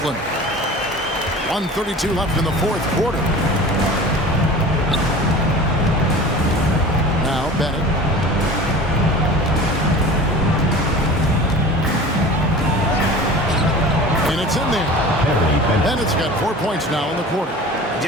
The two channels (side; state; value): both; normal; correlation 0.39